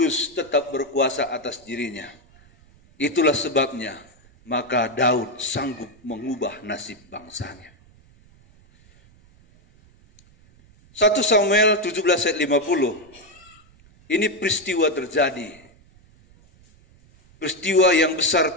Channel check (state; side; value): noise; right; rumble, 28 dB below the sound